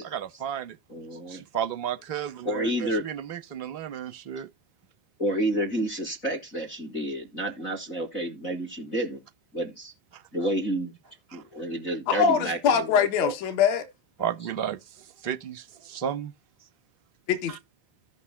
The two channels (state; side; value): late; right; 4.0 ms